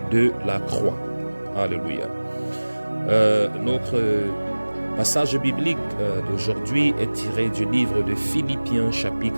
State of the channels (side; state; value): both; inverted; correlation -1.00